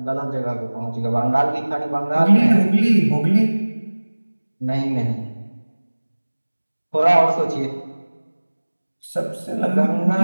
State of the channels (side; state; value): both; inverted; correlation -1.00